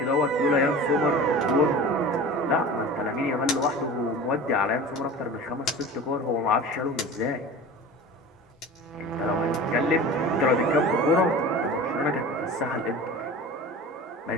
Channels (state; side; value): normal; both; correlation 0.36